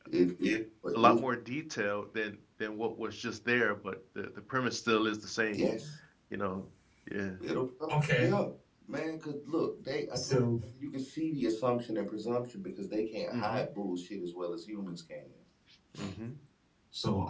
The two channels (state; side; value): identical; both; correlation 1.00